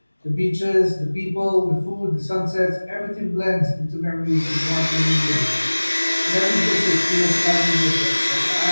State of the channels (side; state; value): both; inverted; correlation -1.00